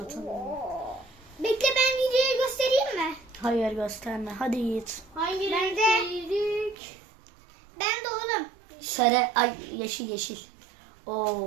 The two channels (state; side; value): drops out; left; at 6.8 s